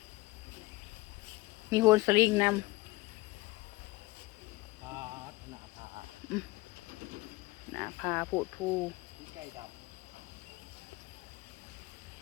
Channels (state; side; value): quieter; right; 21.1 dB